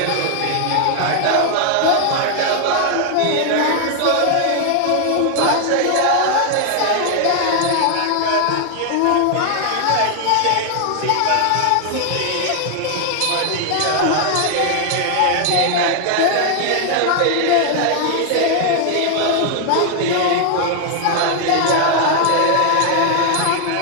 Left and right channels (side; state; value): both; different; correlation 0.00